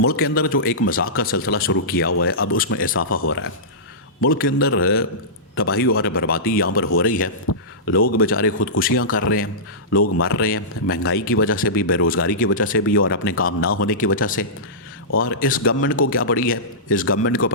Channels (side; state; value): both; normal; correlation -0.18